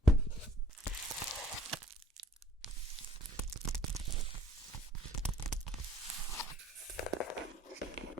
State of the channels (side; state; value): both; normal; correlation 0.58